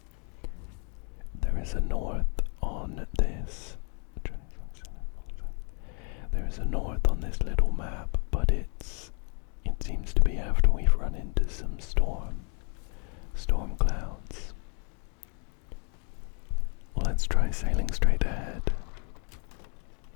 There is a north on this. There is a north on this little map, but it seems to be after we've run into some storm clouds. Let's try sailing straight ahead.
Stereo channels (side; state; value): right; quieter; 39.5 dB